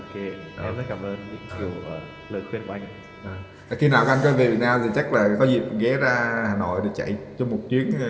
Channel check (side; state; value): both; identical; correlation 1.00